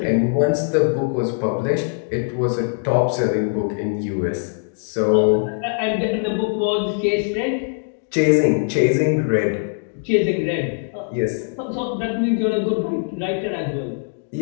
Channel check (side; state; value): right; silent; digital silence